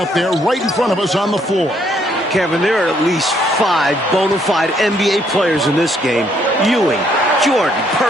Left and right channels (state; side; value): normal; both; correlation 0.69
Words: there right in front of us on the floor. Kevin, there are at least 5 bona fide NBA players in this game. Ewing, Jordan,